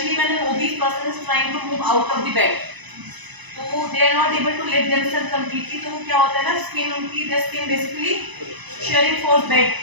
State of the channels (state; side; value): late; left; 1.0 ms